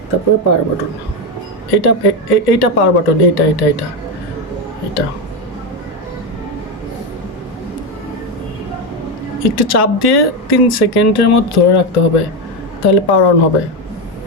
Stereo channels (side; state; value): both; normal; correlation 0.11